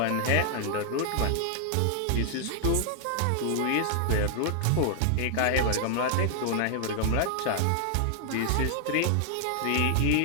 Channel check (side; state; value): both; different; correlation 0.00